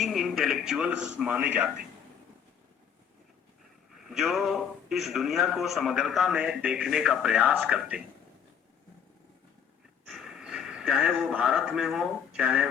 इंटेलेक्चुअल्स माने जाते हैं, जो इस दुनिया को समग्रता में देखने का प्रयास करते हैं, चाहे वो भारत में हो, चाहे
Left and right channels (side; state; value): right; quieter; 7.8 dB